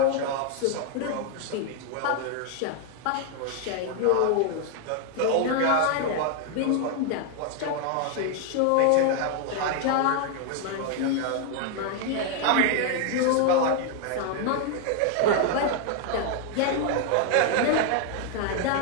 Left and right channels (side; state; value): both; different; correlation 0.00